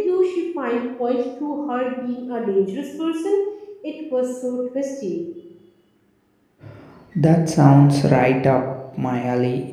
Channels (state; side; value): identical; both; correlation 1.00